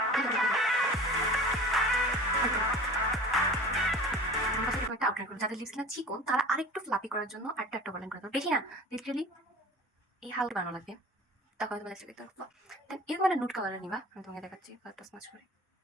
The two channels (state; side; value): normal; both; correlation 0.40